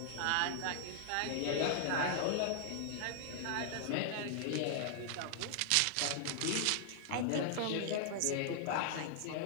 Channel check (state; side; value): different; both; correlation -0.01